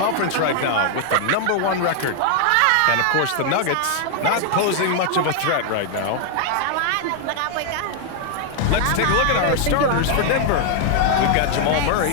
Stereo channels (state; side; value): different; both; correlation 0.00